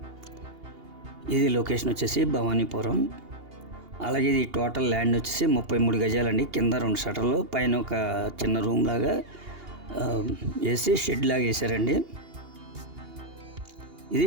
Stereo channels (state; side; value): late; left; 2.8 ms